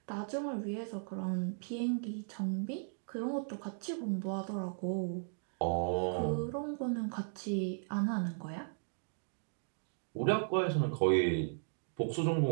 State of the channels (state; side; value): silent; left; digital silence